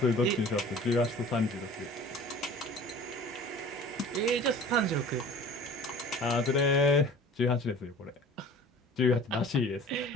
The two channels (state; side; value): normal; both; correlation 0.44